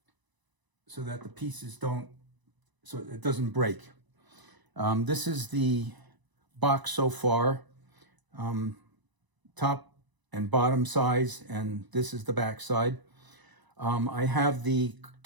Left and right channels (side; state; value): left; late; 1.0 ms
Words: so that the pieces don't, so it doesn't break. This is the box so far, top and bottom size, and this is the back side. I have the